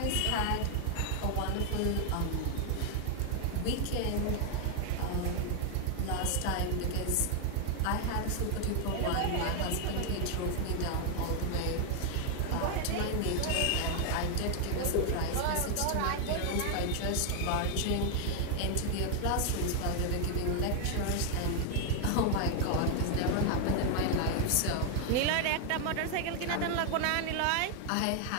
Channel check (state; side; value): different; both; correlation 0.01